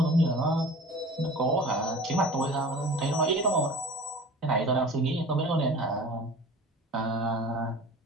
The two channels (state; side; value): normal; both; correlation 0.41